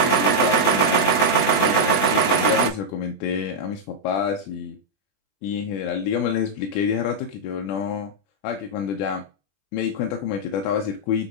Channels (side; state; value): right; late; 20 ms